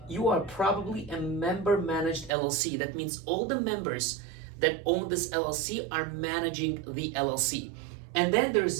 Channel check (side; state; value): left; drops out; at 2.3 s